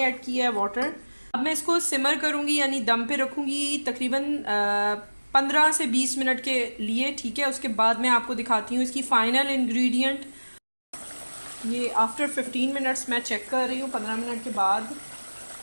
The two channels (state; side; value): inverted; both; correlation -1.00